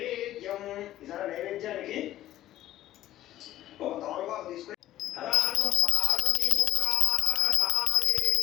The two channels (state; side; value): quieter; right; 13.7 dB